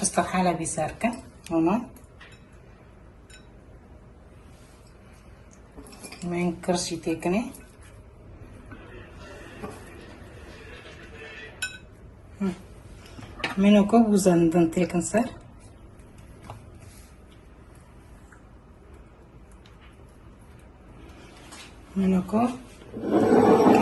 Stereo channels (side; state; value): both; identical; correlation 1.00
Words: استحالة بيساركة هنا من كرسي تكني منو كوب وزندن تكن صار منو كوب